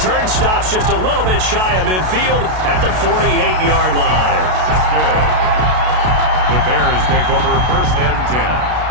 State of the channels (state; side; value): late; left; 32 ms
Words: stops just a little bit shy of midfield at the 48-yard line. The Bears take over 1st and 10